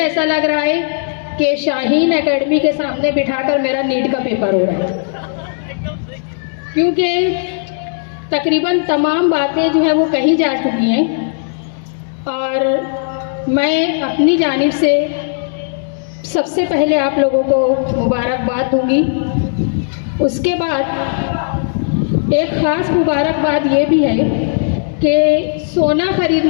लग रहा है कि शाहीन एकेडमी के सामने बिठाकर मेरा नीट का पेपर हो रहा है, क्योंकि तकरीबन तमाम बातें जो है वो कही जा चुकी हैं और मैं अपनी जानिब से सबसे पहले आप लोगों को मुबारकबाद दूंगी। उसके बाद एक ख़ास मुबारकबाद ये भी है कि सोना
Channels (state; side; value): silent; right; digital silence